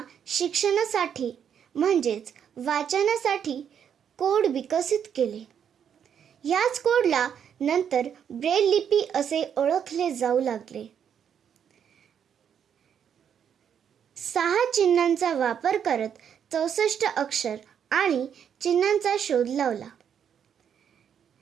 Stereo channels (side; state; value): left; quieter; 8.3 dB